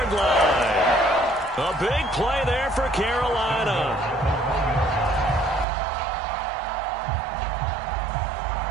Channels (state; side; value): drops out; left; at 5.7 s